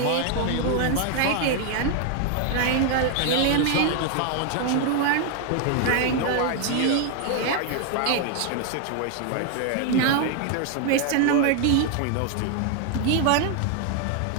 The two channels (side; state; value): both; different; correlation 0.00